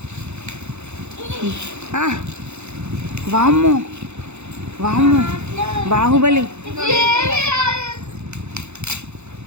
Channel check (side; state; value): left; late; 0.81 ms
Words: వామ్మో వామ్మో, బాహుబలి